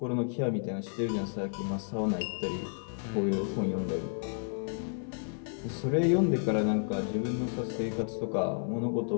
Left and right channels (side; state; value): right; silent; digital silence